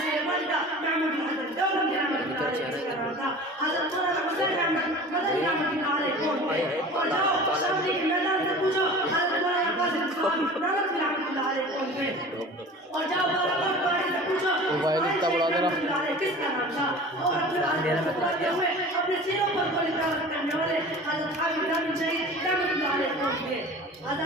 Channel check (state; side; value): normal; both; correlation 0.39